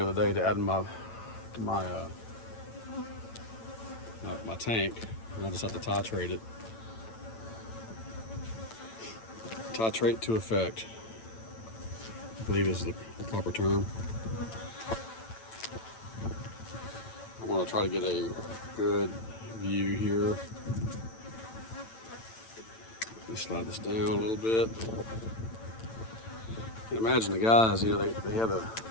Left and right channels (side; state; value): right; late; 8.9 ms